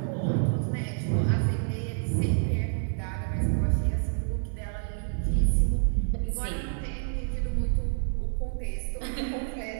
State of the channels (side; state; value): left; silent; digital silence